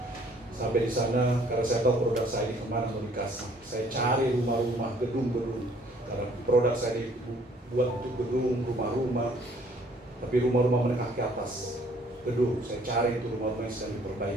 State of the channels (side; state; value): both; normal; correlation 0.60